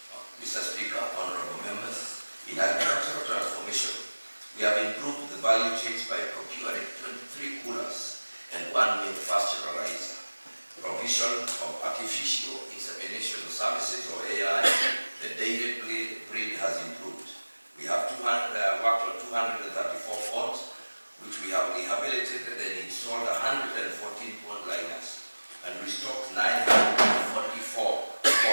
Mr. Speaker, honorable members, in agricultural transformation, we have improved the value chains by procuring 23 coolers and 1 milk pasteurizer. Provision of artificial insemination services, or AI, the dairy breed has improved. We have worked on 234 ponds, which we have rehabilitated and installed 114 pond liners, and restocked 944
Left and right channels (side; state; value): both; inverted; correlation -1.00